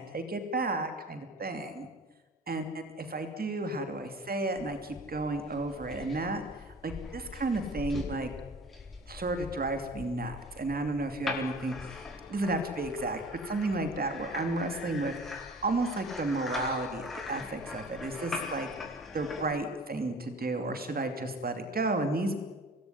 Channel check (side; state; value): both; normal; correlation 0.43